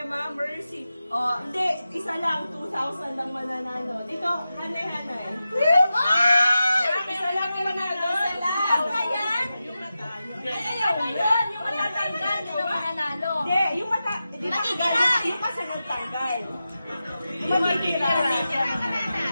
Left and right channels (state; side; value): inverted; both; correlation -0.92